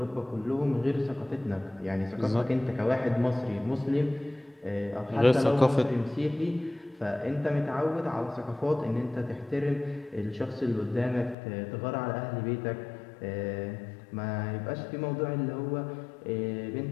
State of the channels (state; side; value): drops out; right; at 11.4 s